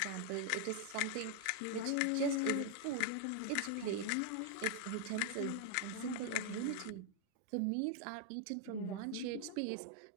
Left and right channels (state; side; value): different; both; correlation 0.00